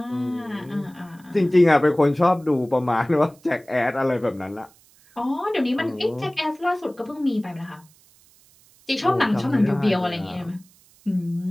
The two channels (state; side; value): noise; right; hiss, 29 dB below the sound